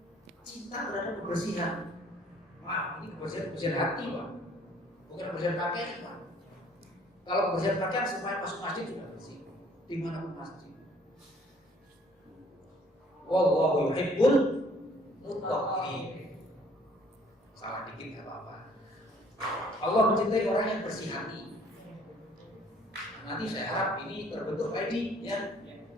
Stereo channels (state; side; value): normal; both; correlation 0.59